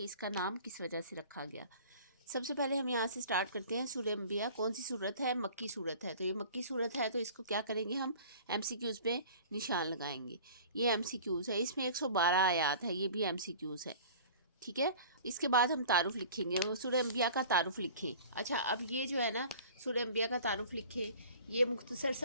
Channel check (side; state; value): both; inverted; correlation -0.44